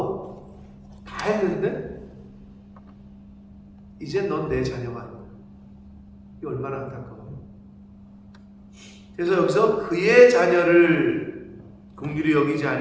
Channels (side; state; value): both; identical; correlation 1.00